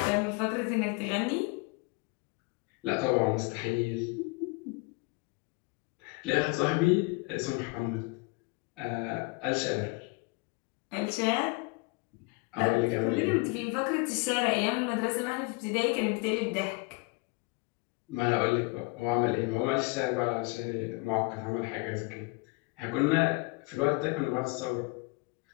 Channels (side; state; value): right; quieter; 28.3 dB